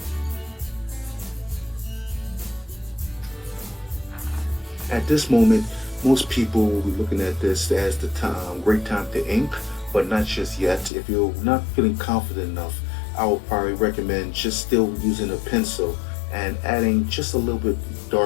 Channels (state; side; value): drops out; right; at 10.9 s